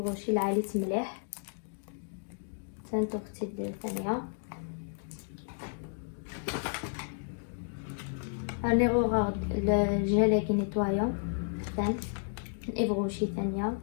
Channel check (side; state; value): right; silent; digital silence